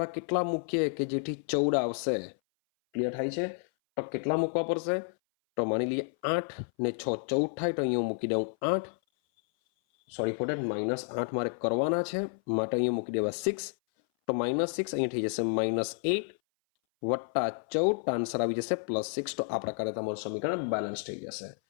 કેટલા મૂકીએ કે જેથી 14 આવશે. ક્લિયર થાય છે? તો કેટલા મૂકવા પડશે? તો માની લઈએ 8 ને 6 14 થાય. તો અહીંયા મૂકી દઉં 8. સોરી ફોર ધેટ -8 મારે કરવાના છે માટે અહીંયા મૂકી દેવા 6. તો -6 અહીંયા થઈ જશે -8 વત્તા 14. આન્સર આવી જશે +6. તો આ પ્રકારે તમારું સમીકરણ બેલેન્સ થઈ જશે.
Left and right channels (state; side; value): silent; right; 58 dB below the other